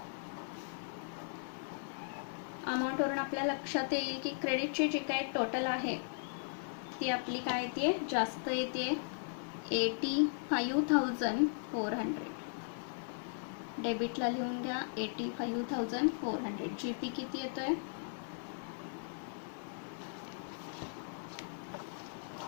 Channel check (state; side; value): silent; right; digital silence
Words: अमाऊंटवरून आपल्या लक्षात येईल की क्रेडिटची जी काही टोटल आहे ती आपली काय येते जास्त येते 85400. डेबिटला लिहून घ्या 85400. जीपी किती येतोय